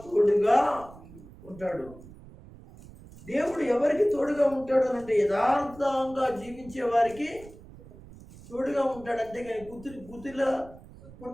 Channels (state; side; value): noise; right; rumble, 19 dB below the sound